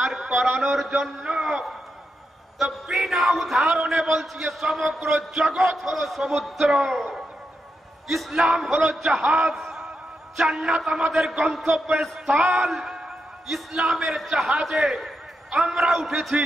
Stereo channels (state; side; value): normal; both; correlation 0.85